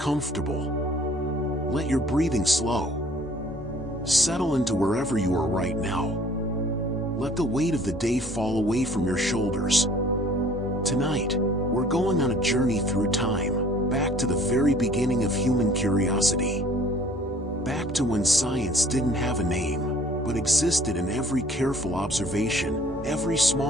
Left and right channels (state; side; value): normal; both; correlation 0.54